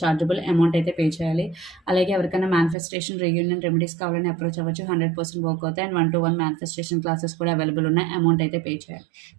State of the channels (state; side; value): drops out; left; at 2.8 s